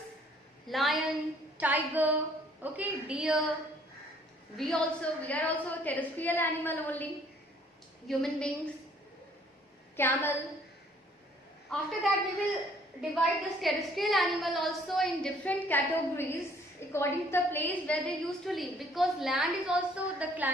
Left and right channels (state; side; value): normal; both; correlation 0.60